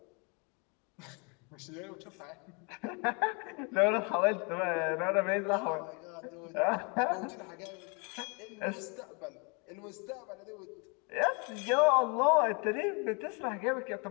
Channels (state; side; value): quieter; right; 33.1 dB